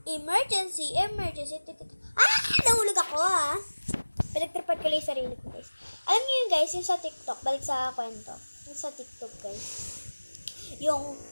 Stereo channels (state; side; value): inverted; both; correlation -1.00